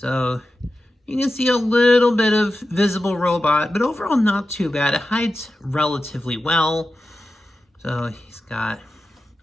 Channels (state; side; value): normal; both; correlation 0.92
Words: you can see a little bit of visible robot, but overall not too bad. It hides relatively well. So he's got